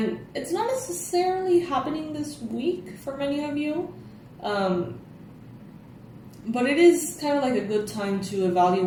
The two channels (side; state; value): both; identical; correlation 1.00